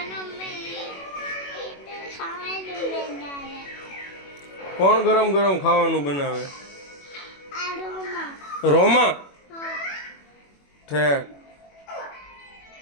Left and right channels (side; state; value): right; late; 21 ms